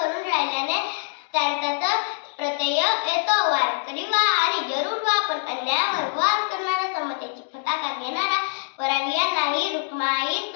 राहिल्याने त्यांचा तर प्रत्यय येतो. वारकरी वा आणि जरूर वा, पण अन्यायावर वार करणारा, समतेची फटाका घेणारा, परावियांनाही रुक्माई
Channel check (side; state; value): right; silent; digital silence